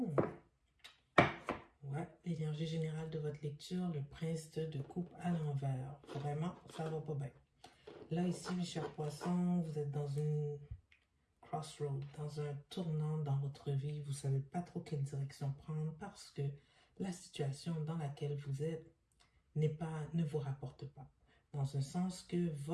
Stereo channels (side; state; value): both; identical; correlation 1.00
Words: Ouais, l'énergie générale de votre lecture, le prince de coupe à l'envers. Vraiment, ça va pas bien. Là, ici, mes chers poissons, vous êtes dans une crossroad, dans un tournant dans votre vie. Vous ne savez pas trop quelle direction prendre parce que la situation dans laquelle vous êtes ne vous rapporte pas. Dans un sens que